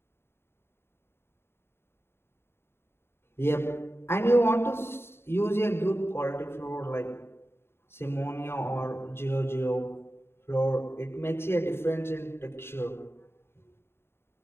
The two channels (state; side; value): late; right; 0.11 ms